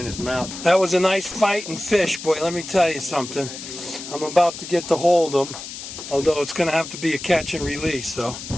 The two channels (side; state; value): left; noise; hiss, 11 dB below the sound